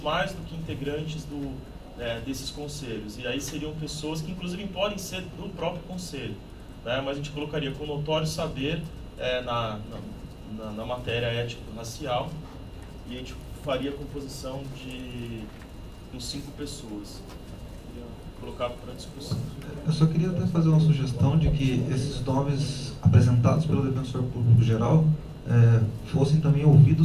do que integrantes desses conselhos. E aí seriam pessoas que inclusive podem ser do próprio conselho, né? Mas a gente colocaria com notório saber na matéria étnico-racial, e a gente faria a composição com 5 pessoas. Queria colocar para discussão. Eu só queria até fazer uma sugestão de que esses nomes apresentados pelo defensor público geral fossem também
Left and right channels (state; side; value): identical; both; correlation 1.00